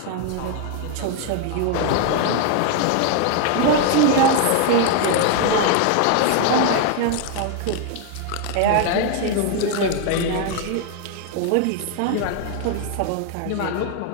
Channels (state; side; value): different; both; correlation 0.00